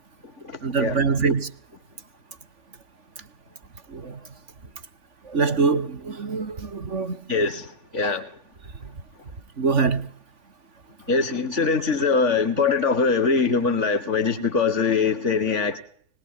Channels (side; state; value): left; late; 3.5 ms